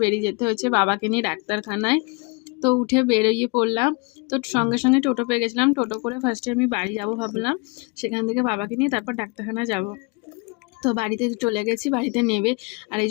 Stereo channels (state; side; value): quieter; right; 29.7 dB